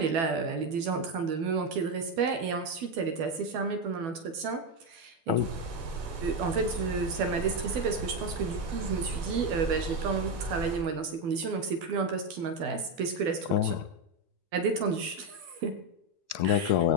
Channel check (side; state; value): left; late; 12 ms